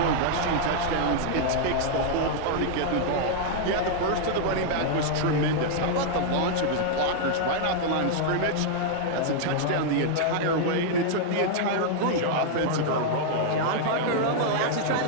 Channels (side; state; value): both; different; correlation -0.01